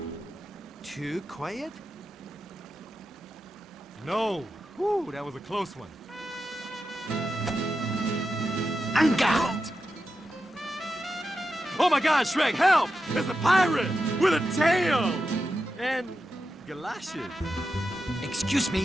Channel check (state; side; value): normal; both; correlation 0.89